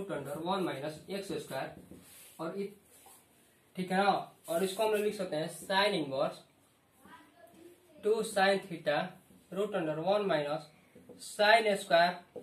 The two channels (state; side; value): identical; both; correlation 1.00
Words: under 1 minus x square, और ठीक है ना। और इसको हम लोग लिख सकते हैं sine inverse 2 sine theta root under 1 minus sine square